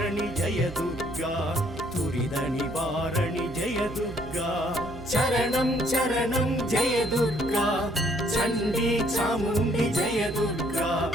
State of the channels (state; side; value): noise; right; hum, 14 dB below the sound